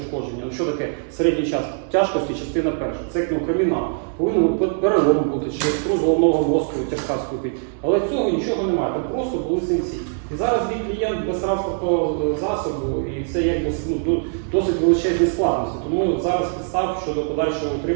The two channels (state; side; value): silent; left; 64 dB below the other